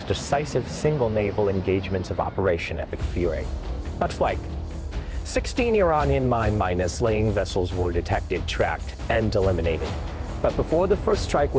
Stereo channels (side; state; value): both; identical; correlation 1.00